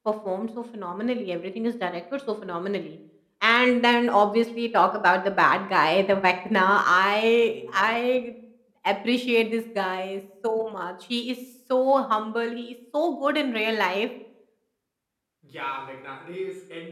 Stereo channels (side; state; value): both; identical; correlation 1.00